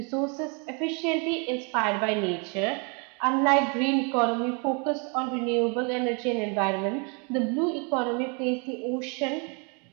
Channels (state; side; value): quieter; left; 34.8 dB